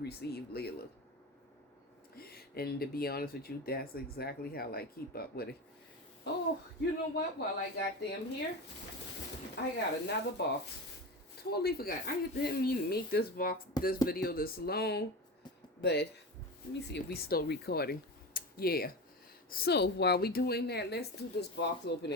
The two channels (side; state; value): both; normal; correlation 0.25